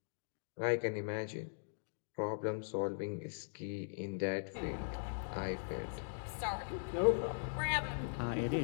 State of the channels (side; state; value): right; silent; digital silence